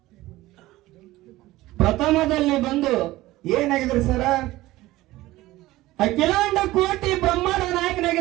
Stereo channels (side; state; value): left; quieter; 17.5 dB